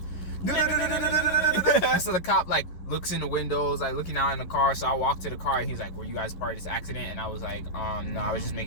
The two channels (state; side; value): late; right; 11 ms